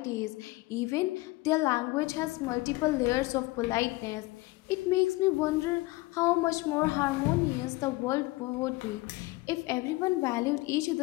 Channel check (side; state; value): right; quieter; 21.2 dB